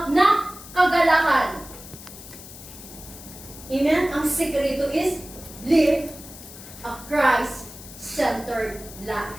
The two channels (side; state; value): left; noise; hiss, 16 dB below the sound